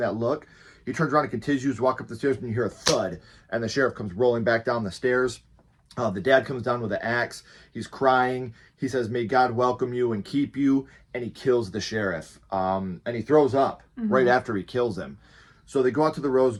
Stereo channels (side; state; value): both; identical; correlation 1.00